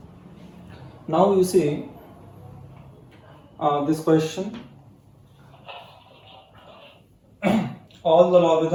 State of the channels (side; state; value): both; identical; correlation 1.00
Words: Now you see this question. All the